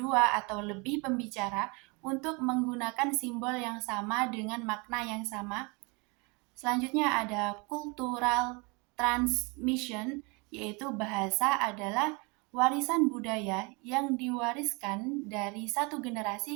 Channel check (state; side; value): quieter; left; 29.5 dB